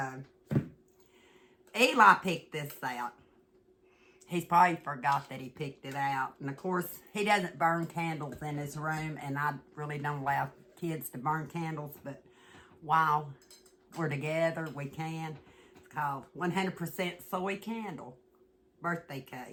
Eli picked this out. He's probably forgot that he picked it out. And of course, he doesn't burn candles in his room, and I really don't allow kids to burn candles, but while we're together, we can. It's called 100% Soy Candle. birthday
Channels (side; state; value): both; identical; correlation 1.00